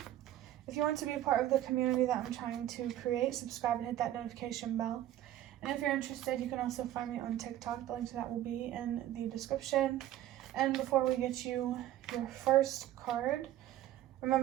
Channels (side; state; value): left; quieter; 13.1 dB